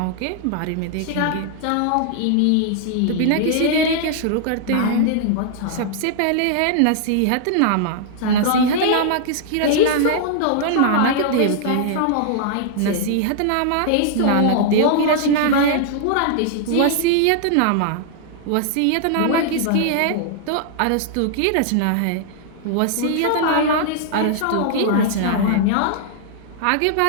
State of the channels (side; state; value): both; different; correlation -0.01